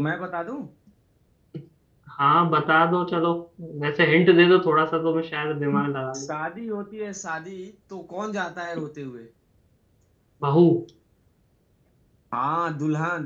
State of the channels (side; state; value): both; identical; correlation 1.00